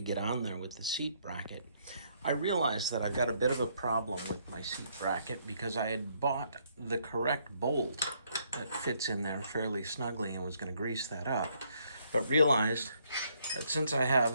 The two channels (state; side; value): inverted; both; correlation -0.70